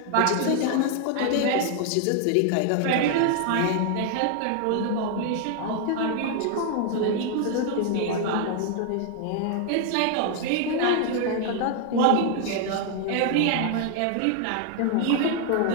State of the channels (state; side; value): different; both; correlation 0.00